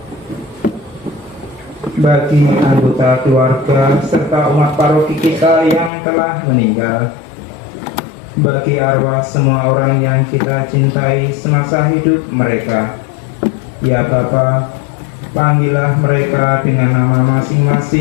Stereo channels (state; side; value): drops out; right; at 5.9 s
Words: bagi anggota keluarga serta umat paroki kita yang telah meninggal, bagi arwah semua orang yang kita cintai semasa hidup mereka. Ya Bapa, panggillah mereka dengan nama